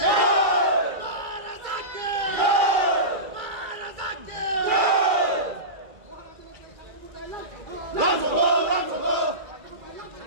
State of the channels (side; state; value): left; late; 2.4 ms